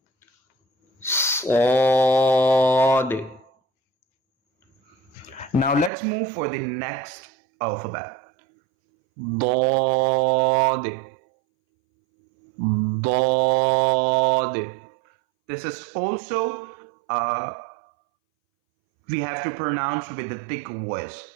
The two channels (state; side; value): drops out; left; at 5.9 s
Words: صاد. Now let's move for the next alphabet. ضاد ضاد. This is also we have to pronounce with the thick voice.